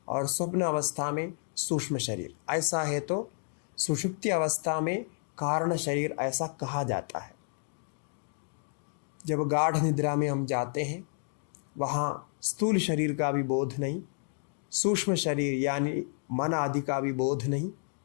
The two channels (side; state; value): right; silent; digital silence